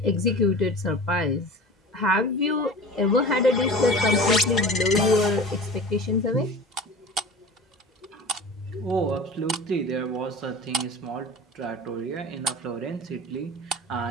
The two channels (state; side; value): normal; both; correlation 0.37